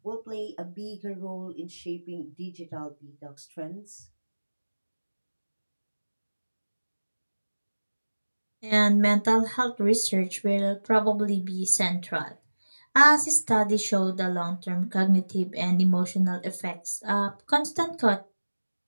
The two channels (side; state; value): both; inverted; correlation -1.00